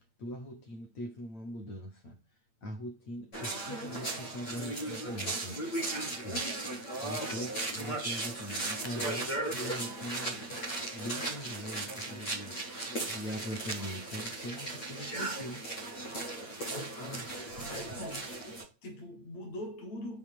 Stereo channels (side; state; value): right; late; 8.8 ms